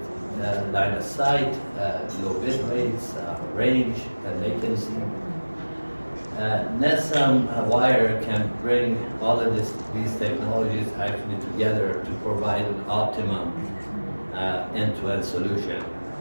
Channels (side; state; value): both; inverted; correlation -1.00